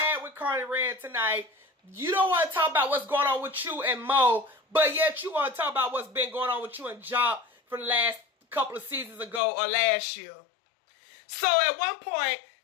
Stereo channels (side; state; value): right; drops out; at 9.4 s